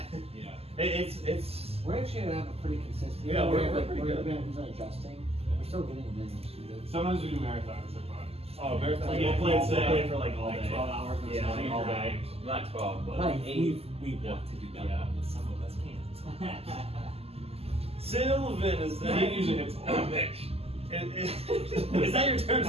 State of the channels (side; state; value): left; late; 0.29 ms